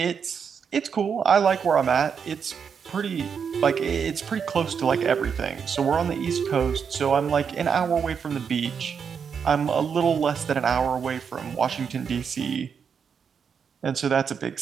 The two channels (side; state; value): left; quieter; 6.7 dB